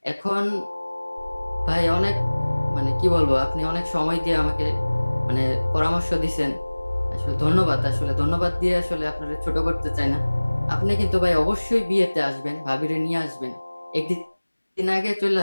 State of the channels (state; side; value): inverted; both; correlation -1.00